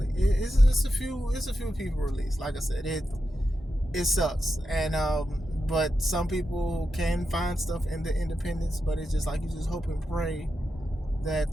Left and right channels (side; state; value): both; normal; correlation 0.88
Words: It's a few people released. Like I said, it sucks, and but some people can find stuff in the independents. But it's just like you just hope and pray that